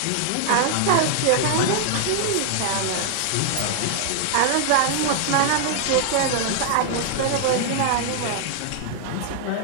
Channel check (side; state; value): both; different; correlation 0.00